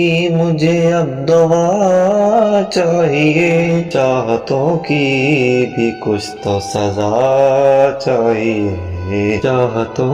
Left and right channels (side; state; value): both; identical; correlation 1.00